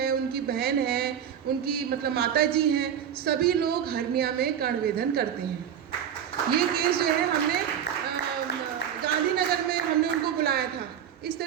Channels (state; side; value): quieter; left; 9.1 dB